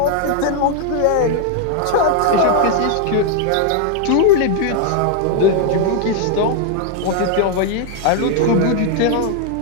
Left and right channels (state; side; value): different; both; correlation 0.00